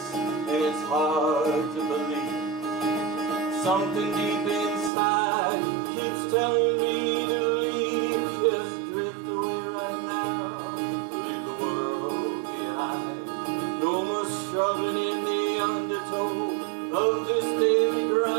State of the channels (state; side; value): drops out; left; at 4.9 s